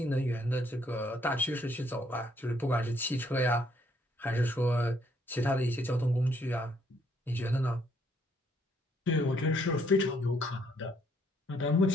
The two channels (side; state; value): both; normal; correlation 0.69